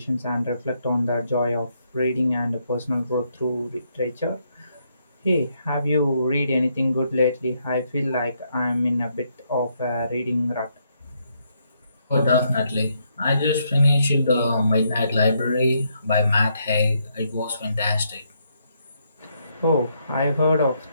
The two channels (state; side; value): inverted; both; correlation -0.75